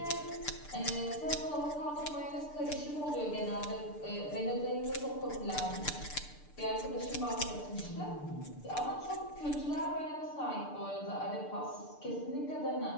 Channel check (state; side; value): late; right; 6.7 ms